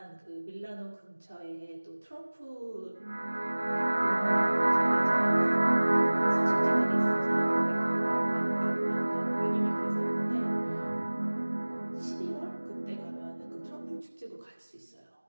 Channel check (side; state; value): both; inverted; correlation -1.00